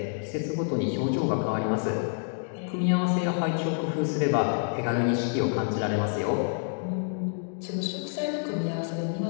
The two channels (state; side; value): silent; right; digital silence